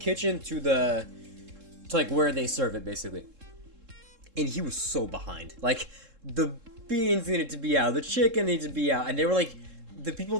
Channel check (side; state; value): left; late; 3.7 ms